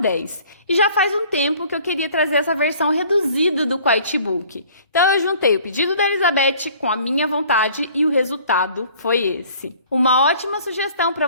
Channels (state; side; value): inverted; both; correlation -0.52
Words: E já faz um tempo que eu queria trazer essa versão reduzida do Quiet Book. Então eu juntei o pedido da Elizabeth com a minha vontade e o resultado foi esse. Uma ótima sugestão para